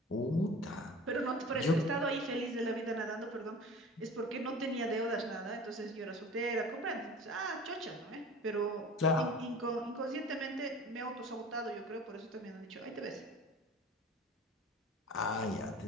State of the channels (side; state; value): both; normal; correlation 0.40